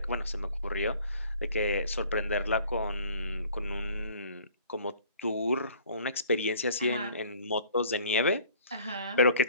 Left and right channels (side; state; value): both; inverted; correlation -0.53